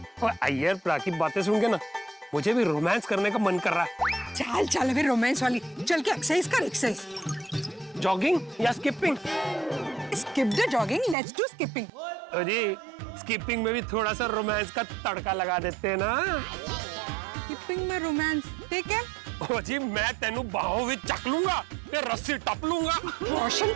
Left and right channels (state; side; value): drops out; left; at 11.2 s